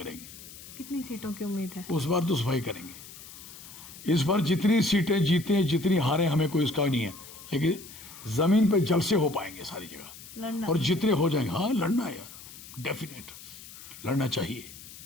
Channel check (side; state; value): left; noise; hiss, 16 dB below the sound